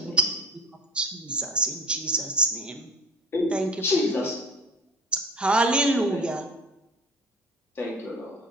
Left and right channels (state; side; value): normal; both; correlation 0.40